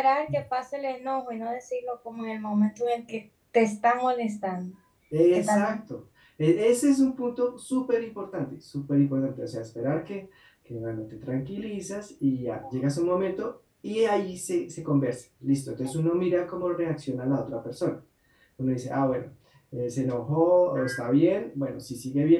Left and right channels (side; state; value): both; identical; correlation 1.00